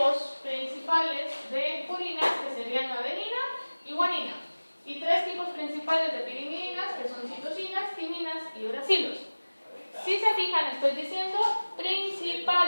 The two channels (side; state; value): both; inverted; correlation -1.00